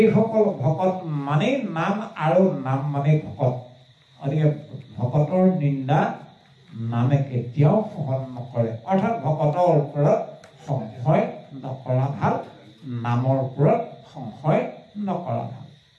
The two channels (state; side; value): identical; both; correlation 1.00